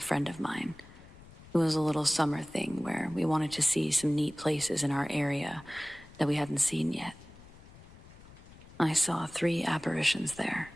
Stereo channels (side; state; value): left; noise; rumble, 20 dB below the sound